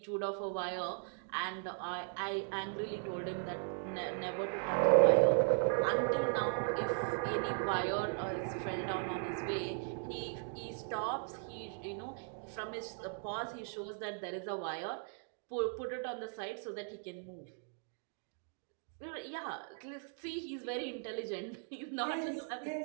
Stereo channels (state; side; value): silent; left; 52 dB below the other